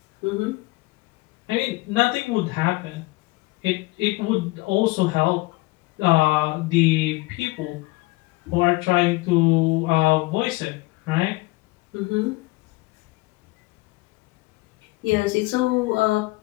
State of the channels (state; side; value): quieter; right; 22.5 dB